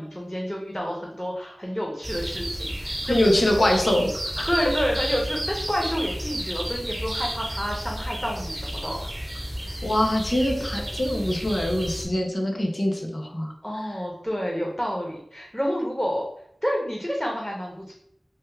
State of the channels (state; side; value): normal; both; correlation 0.97